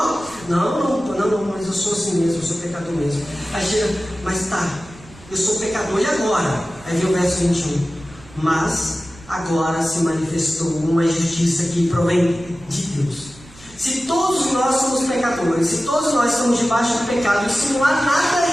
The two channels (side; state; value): right; noise; rumble, 22 dB below the sound